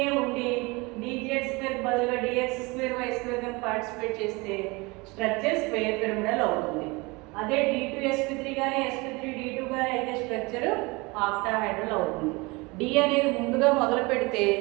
ఉండి dz2 బదులుగా dx2y2 కనుక పార్టిసిపేట్ చేస్తే స్ట్రక్చర్ స్క్వేర్ పిరమిడల్ అవుతుంది. అదే d2sp3 కానీ sp3d2 కానీ అయితే స్ట్రక్చర్ ఆక్టాహెడ్రల్ అవుతుంది. డి అనేది ముందుగా మొదలు పెడితే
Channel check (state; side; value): quieter; left; 25.4 dB